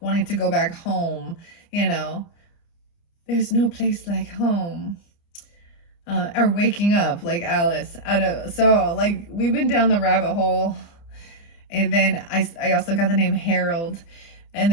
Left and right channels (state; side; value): late; right; 29 ms